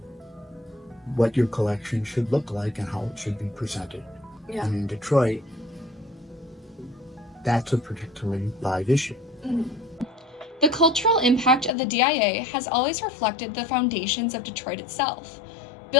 What your collection should look like and how it should be presented. Yeah. And in Detroit, that's a particularly live issue. Mm-hmm. The cultural impact of the DIA has always reflected the foundations of Detroit itself,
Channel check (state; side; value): drops out; right; at 11.7 s